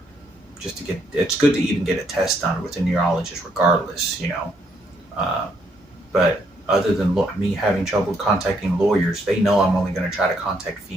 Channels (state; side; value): normal; both; correlation 0.73